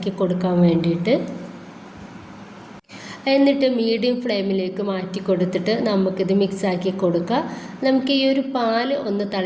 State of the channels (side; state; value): both; identical; correlation 1.00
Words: കൊടുക്കാൻ വേണ്ടിയിട്ട്. എന്നിട്ട് മീഡിയം ഫ്ലെയിമിലേക്ക് മാറ്റി കൊടുത്തിട്ട് നമുക്കിത് മിക്സാക്കി കൊടുക്കുക. നമുക്ക് ഈ ഒരു പാൽ ഒന്ന്